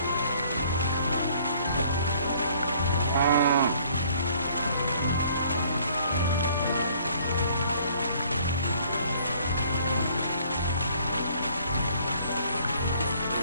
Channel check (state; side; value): inverted; both; correlation -0.59